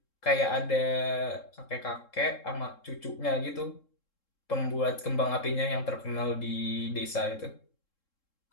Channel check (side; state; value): right; late; 3.7 ms